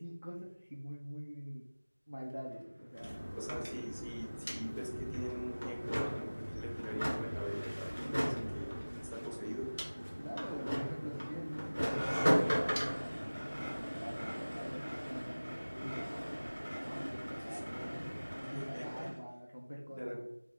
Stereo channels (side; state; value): both; inverted; correlation -1.00